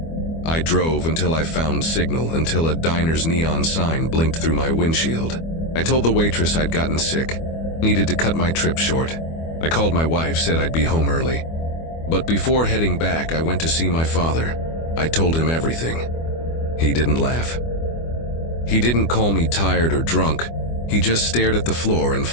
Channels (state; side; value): late; right; 25 ms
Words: I drove until I found signal, until a diner's neon sign blinked through my windshield. I told the waitress I'd gotten sick, needed to cut my trip short. I called my wife, said I'd be home early. But before heading back, I went to see my father. I told him everything. He didn't laugh. He didn't call me tired or drunk. He just stared at the floor and